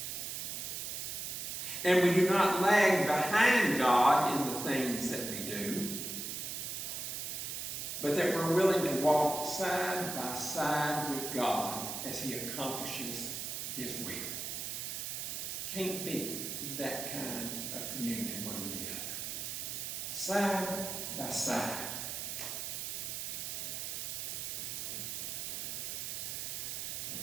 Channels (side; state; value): right; noise; hiss, 4 dB below the sound